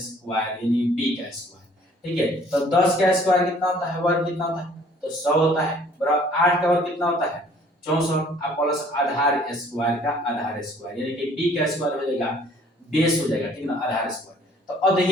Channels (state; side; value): normal; both; correlation 0.56